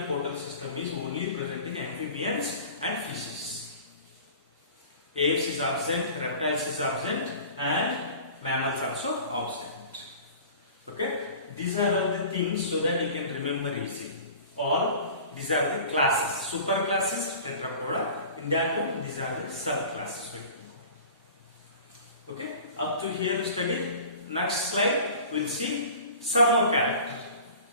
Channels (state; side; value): inverted; both; correlation -0.42